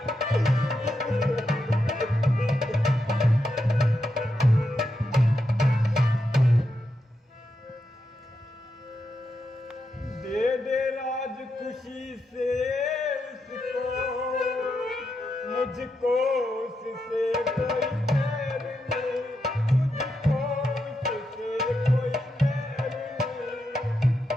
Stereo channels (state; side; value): normal; both; correlation 0.85